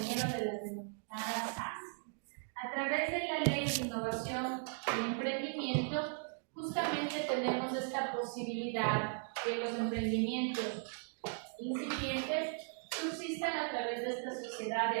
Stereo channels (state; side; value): silent; left; 53 dB below the other